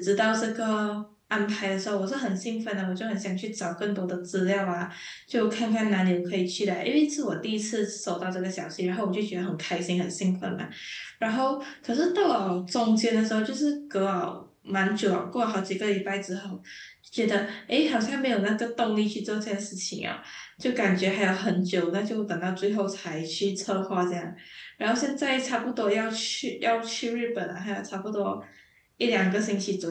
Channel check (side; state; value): both; identical; correlation 1.00